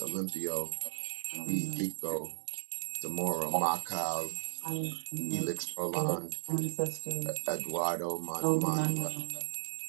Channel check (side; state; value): left; silent; digital silence